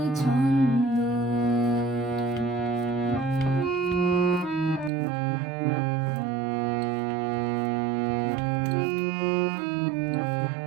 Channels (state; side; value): drops out; left; at 4.9 s